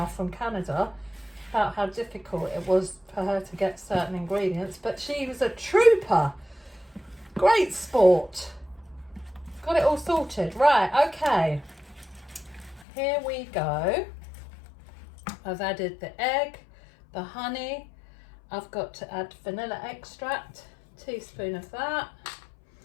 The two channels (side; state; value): right; drops out; at 12.9 s